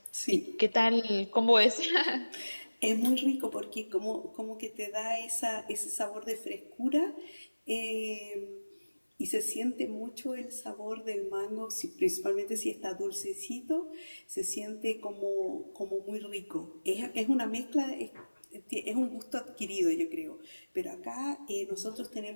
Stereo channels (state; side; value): inverted; both; correlation -1.00